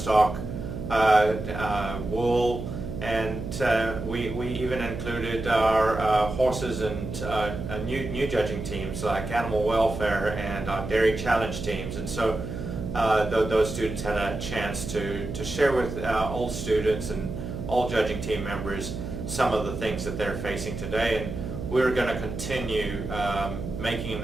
wool, and we even included our horses and new judging teams like animal welfare and our dairy challenge teams. And so those students had a chance to share with all students and all judging team members some of the things that they're facing today, and we're going to continue making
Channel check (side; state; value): right; noise; hum, 7 dB below the sound